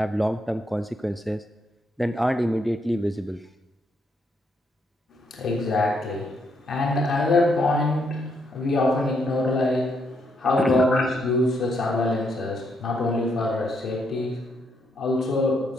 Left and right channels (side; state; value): both; normal; correlation 0.76